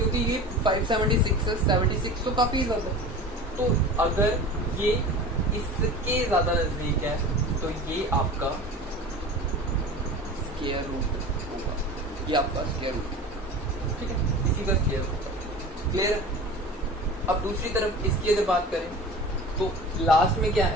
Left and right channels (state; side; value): normal; both; correlation 0.36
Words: ये 576 है, 76 तो काफी ज्यादा है। तो अगर ये इसके ज्यादा नजदीक है तो ये आपका स्क्वायर रूट होगा, ये आपका स्क्वायर रूट, ठीक है, इसी का स्क्वायर होगा। क्लियर? अब दूसरी तरफ इसकी अगर बात करें तो लास्ट में क्या